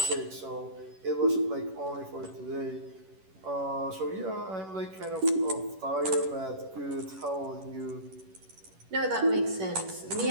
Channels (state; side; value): late; left; 11 ms